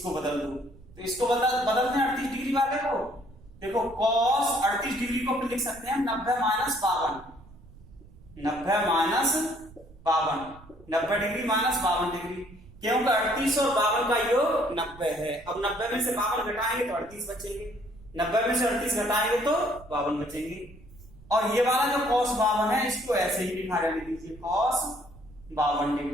बदल दो। तो इसको बदलते हैं 38 डिग्री वाले को। देखो cos 38 डिग्री को लिख सकते हैं 90 minus 52, 90 minus 52, 90 degree minus 52 degree. क्योंकि 38 और 52 का योग 90 है। अब 90 में से 52 घटाएंगे तो 38 बचेंगे, 90 में से 38 घटाएंगे तो 52 बचेंगे। और ये वाला जो cos 52 है इसको ऐसे ही लिखा रहने दीजिए cos 52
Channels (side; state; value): right; noise; rumble, 22 dB below the sound